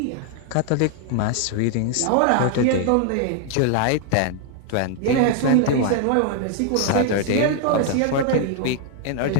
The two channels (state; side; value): different; both; correlation 0.00